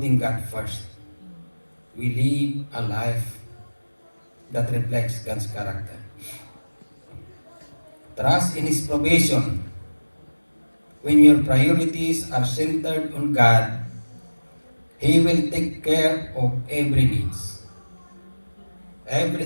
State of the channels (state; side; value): inverted; both; correlation -1.00